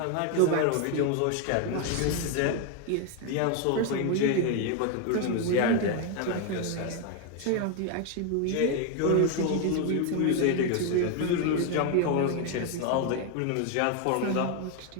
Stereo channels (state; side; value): different; both; correlation 0.01